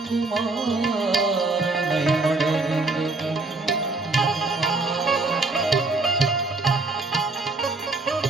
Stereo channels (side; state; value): left; quieter; 3.4 dB